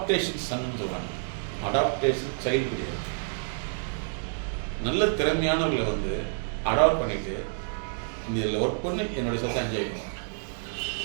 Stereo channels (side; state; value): left; silent; digital silence